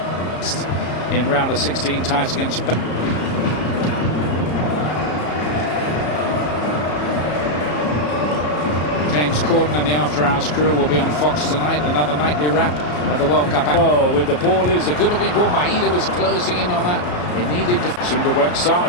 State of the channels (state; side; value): late; right; 34 ms